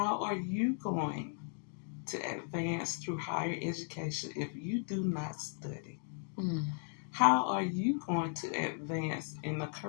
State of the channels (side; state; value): right; silent; 54 dB below the other